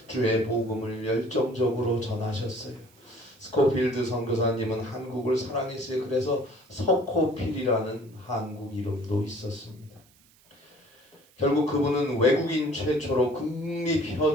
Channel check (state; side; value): noise; right; hiss, 30 dB below the sound